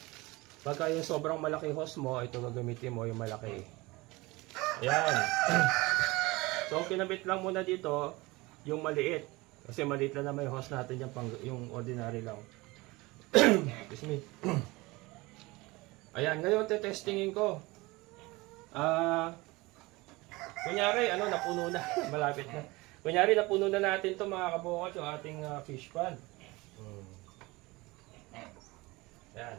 Pagka yung sobrang malaki hose mo, ito gagamitin mo yung malaki. Ayan. So, kinabit lang muna dito yung maliit. Kasi maliit lang naman yung hose natin yung, yung ordinary lang. Excuse me. Ayan, ngayon testingin ko. Kunyari, napuno na. Malapit na. Kunyari, napuno na natin to mga kabukas yung ating fish pan. Ayan.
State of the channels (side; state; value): left; quieter; 22.4 dB